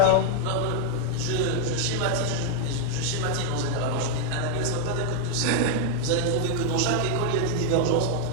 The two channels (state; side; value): different; both; correlation 0.00